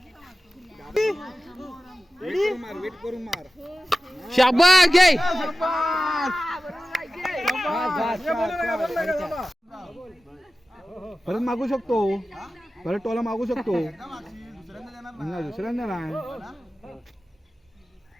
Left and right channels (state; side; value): normal; both; correlation 0.95